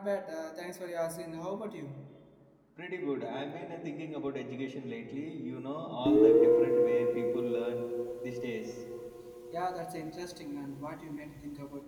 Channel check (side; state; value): both; identical; correlation 1.00